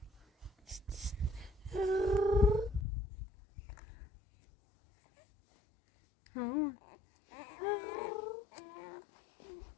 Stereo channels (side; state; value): right; drops out; at 2.9 s